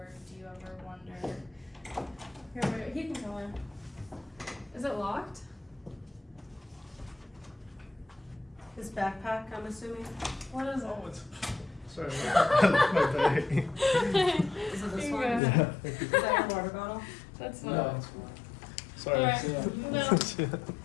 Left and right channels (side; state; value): right; drops out; at 15.4 s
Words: do you ever wonder, Here, wait, he can go in. Is it locked? His backpack, I'm assuming. What is it? Oh, it's sorry, my bag. Is it this You one? go Is ahead. that a water bottle? That's No, fine. it's Sorry. Alright. Yeah. No.